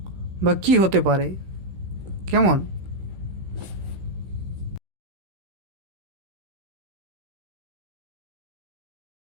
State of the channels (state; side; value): late; left; 16 ms